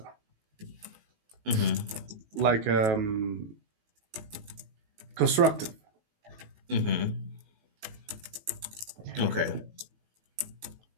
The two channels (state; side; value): late; left; 18 ms